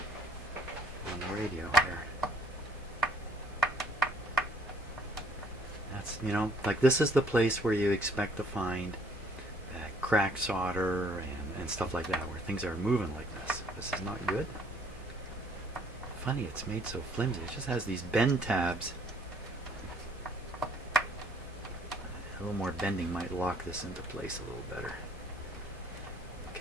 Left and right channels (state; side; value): normal; both; correlation 0.61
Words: on the radio here. That's, you know, like this is the place where you expect to find cracked solder and stuff like that, where things are moving like this. This is not good. Funny, it's made so flimsy. It just has these bend tabs. A little more bending might lock this into place a little better.